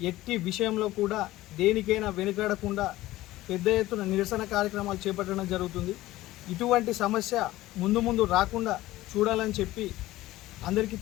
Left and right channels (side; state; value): right; quieter; 16.6 dB